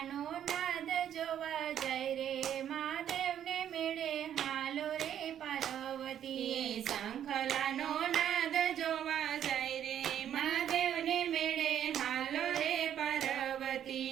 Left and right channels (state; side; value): quieter; left; 10.1 dB